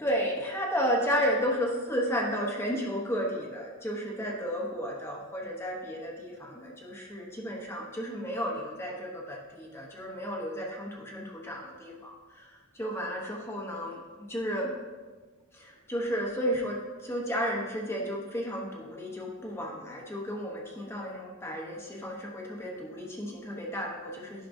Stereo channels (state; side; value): normal; both; correlation 0.27